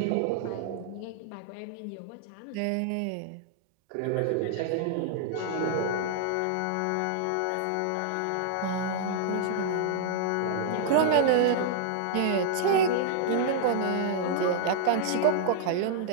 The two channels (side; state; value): both; different; correlation -0.01